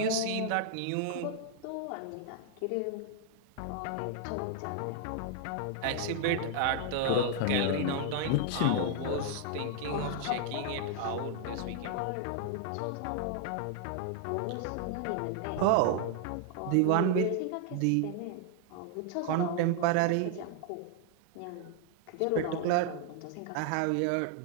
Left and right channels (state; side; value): different; both; correlation 0.00